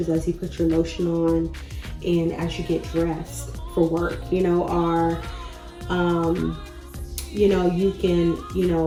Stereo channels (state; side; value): identical; both; correlation 1.00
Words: as you put your lotion on and as you get dressed for work, you know, or, you know, you can, you